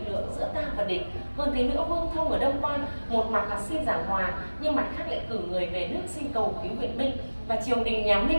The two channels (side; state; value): both; inverted; correlation -1.00